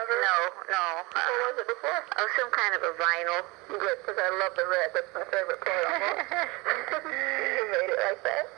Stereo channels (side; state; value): left; quieter; 24.9 dB